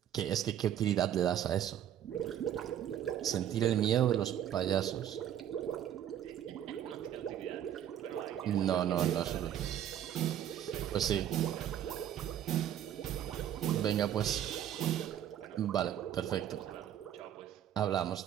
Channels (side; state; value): left; quieter; 10.6 dB